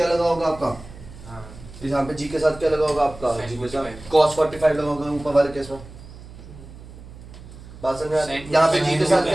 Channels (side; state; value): right; noise; hum, 17 dB below the sound